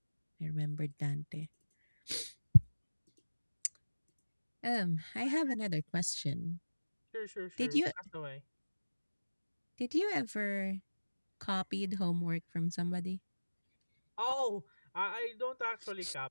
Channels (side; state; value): both; inverted; correlation -1.00